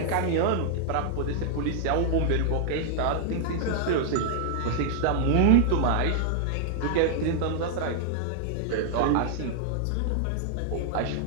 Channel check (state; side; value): different; both; correlation -0.01